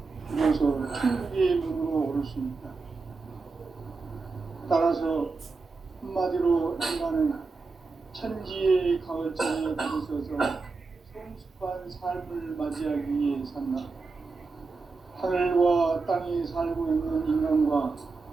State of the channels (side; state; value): left; quieter; 4.2 dB